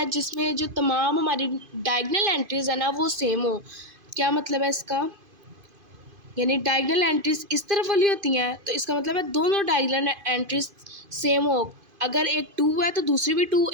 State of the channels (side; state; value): left; late; 2.5 ms